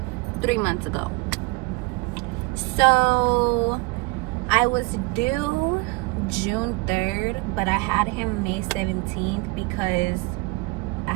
3 months ago. So I was due June 3rd, but I had him May 17th because I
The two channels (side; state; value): left; quieter; 24.8 dB